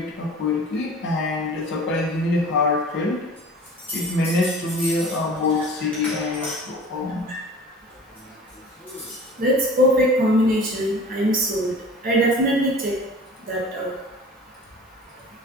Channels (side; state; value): both; normal; correlation 0.43